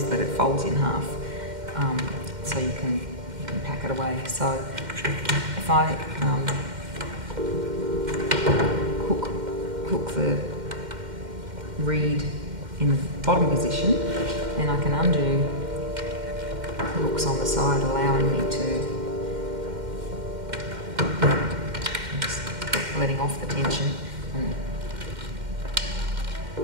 that it folds in half, so you can pack it away. So if I hook the reed in the bottom position, then I can undo the hooks on the side, allowing me to just letting off the tension, and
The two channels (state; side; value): late; left; 2.1 ms